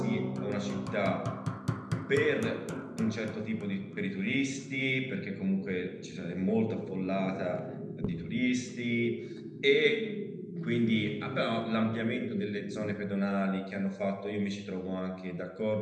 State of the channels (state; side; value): identical; both; correlation 1.00